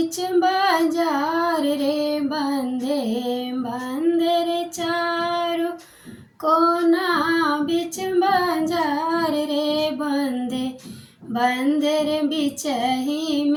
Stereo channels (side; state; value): both; identical; correlation 1.00